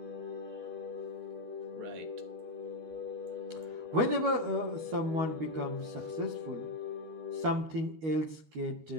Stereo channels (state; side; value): late; left; 13 ms